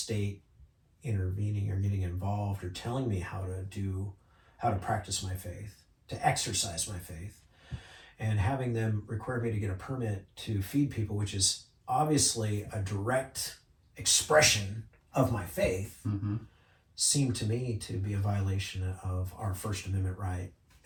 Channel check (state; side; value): identical; both; correlation 1.00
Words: intervening or getting involved or telling me how to practice my faith, to exercise my faith. And having them require me to get a permit to feed people, which is obviously a direct expression of my faith, seemed to me to be a violation of our First Amendment right